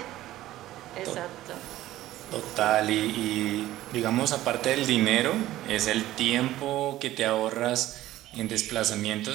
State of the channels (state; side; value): quieter; left; 15.0 dB